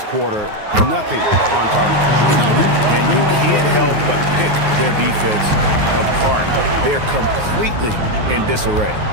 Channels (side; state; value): left; late; 9.5 ms